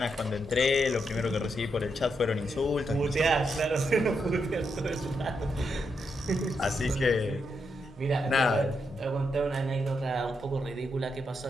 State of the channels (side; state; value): both; normal; correlation 0.82